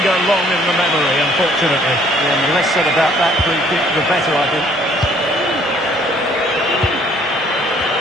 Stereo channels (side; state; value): both; normal; correlation 0.60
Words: long in the memory, unfortunately. Yeah, and the less said about that free kick, the better, I think.